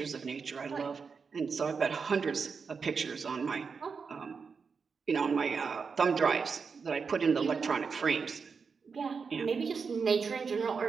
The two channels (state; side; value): quieter; left; 5.4 dB